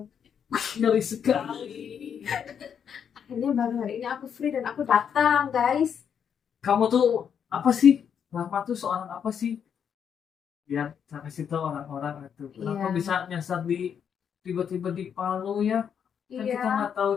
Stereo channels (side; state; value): right; quieter; 7.8 dB